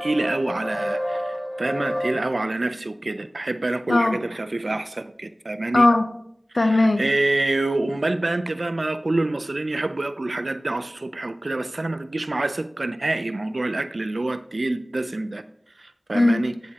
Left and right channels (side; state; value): both; normal; correlation 0.97